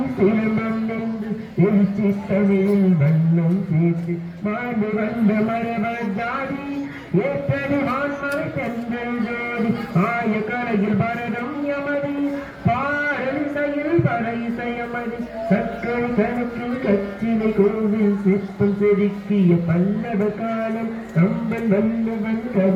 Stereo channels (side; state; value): both; identical; correlation 1.00